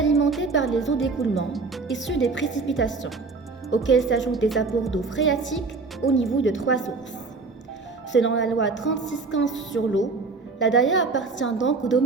par les eaux d'écoulement issues des précipitations, auxquelles s'ajoutent des apports d'eau phréatique au niveau de 3 sources. Selon la loi 3615 sur l'eau, la Daya appartient donc au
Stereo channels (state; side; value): quieter; left; 4.1 dB